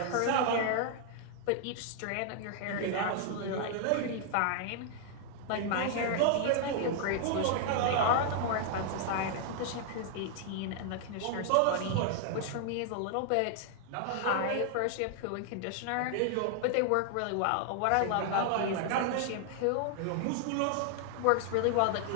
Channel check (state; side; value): different; both; correlation 0.00